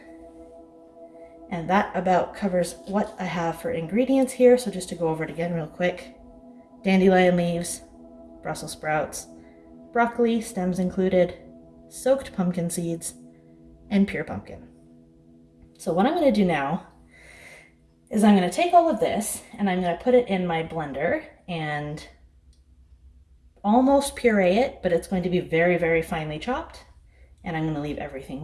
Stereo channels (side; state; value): both; identical; correlation 1.00